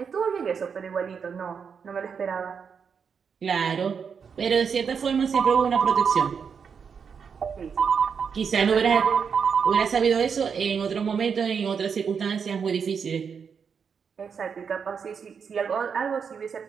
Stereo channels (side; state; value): left; quieter; 6.4 dB